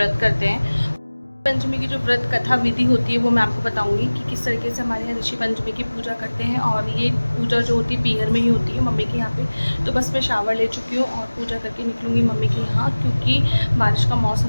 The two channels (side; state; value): both; inverted; correlation -1.00